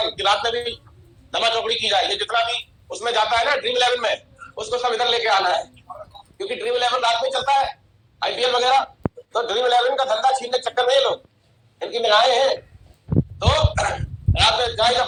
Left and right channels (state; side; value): identical; both; correlation 1.00